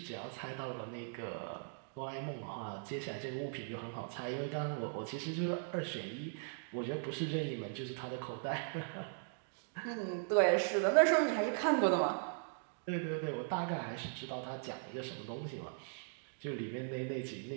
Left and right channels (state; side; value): silent; left; digital silence